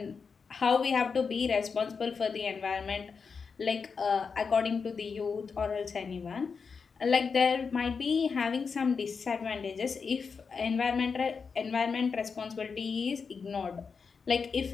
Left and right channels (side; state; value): right; quieter; 5.4 dB